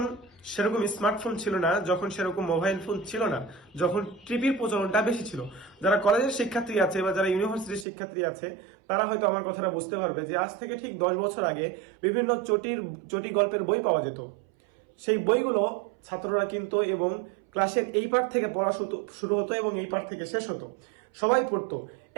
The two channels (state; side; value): drops out; left; at 7.9 s